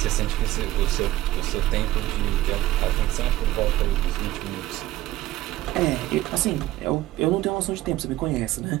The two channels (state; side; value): quieter; left; 15.4 dB